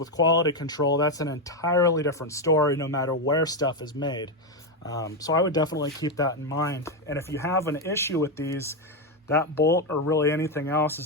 quality control, that's an entirely different story no matter where stuff is made. So I would definitely keep that in mind. And if you have an issue with these, that bolt or really anything else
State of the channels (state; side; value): normal; both; correlation 0.07